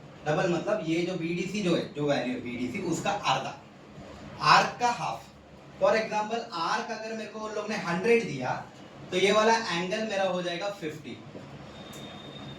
डबल मतलब ये जो BDC जो है, जो वैल्यू है BDC उसका आधा, आर्क का हाफ। फॉर एग्जांपल आर्क अगर मेरे को उन लोग ने 100 दिया तो ये वाला एंगल मेरा हो जाएगा 50।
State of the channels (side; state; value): both; identical; correlation 1.00